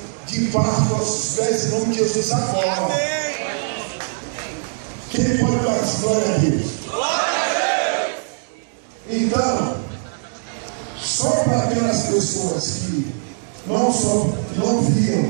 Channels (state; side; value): silent; left; digital silence